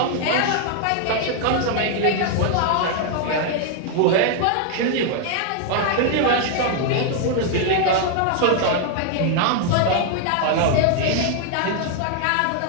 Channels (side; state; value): both; different; correlation 0.00